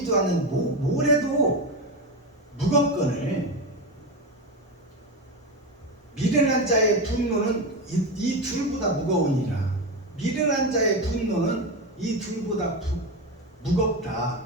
않는 모래도 무겁거늘 미련한 자의 분노는 이 둘보다 무거우니라. 미련한 자의 분노는 이 둘보다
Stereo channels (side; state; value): both; normal; correlation 0.17